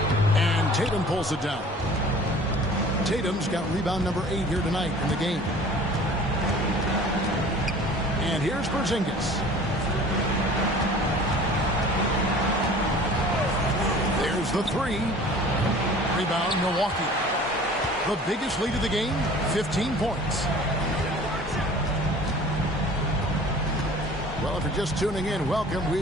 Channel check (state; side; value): normal; both; correlation 0.46